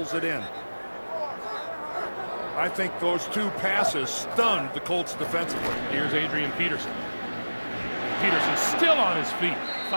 it in. I think those 2 passes stunned the Colts defensively. Here's Adrian Peterson. Peterson still on his feet,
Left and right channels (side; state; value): both; inverted; correlation -1.00